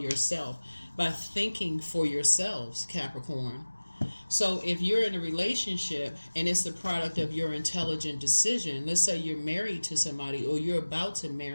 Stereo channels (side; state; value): both; inverted; correlation -1.00